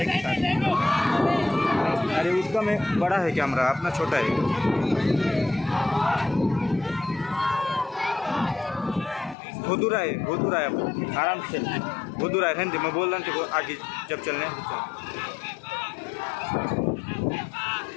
के साथ। अरे उसका में बड़ा है कैमरा, अपना छोटा है। बहुत दूर है आराम से बहुत दूर है। रहने दे, मैं बोल रहा हूँ आगे जब चलने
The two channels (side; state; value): right; drops out; at 9.3 s